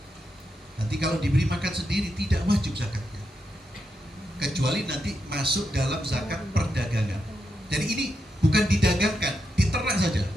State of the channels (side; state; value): both; normal; correlation 0.85